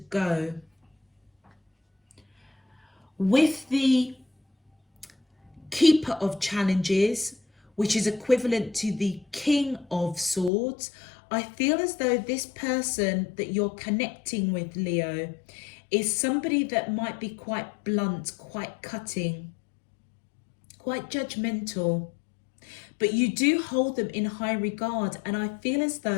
With the Keeper of Challenges, which is equivalent to the King of Swords, I feel as though this person that you're connecting with, Leo, is somebody that might be quite blunt, quite cutting, quite judgmental, but you do hold them in high regard, and I feel as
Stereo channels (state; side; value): drops out; right; at 10.5 s